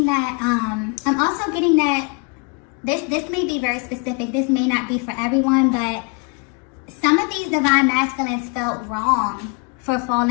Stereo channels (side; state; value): right; quieter; 33.7 dB